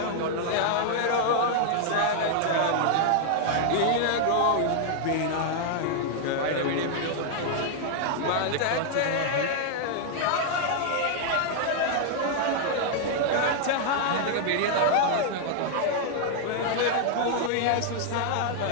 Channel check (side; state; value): both; different; correlation 0.00